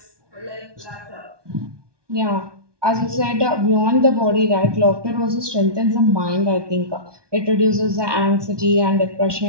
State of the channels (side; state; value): left; late; 1.2 ms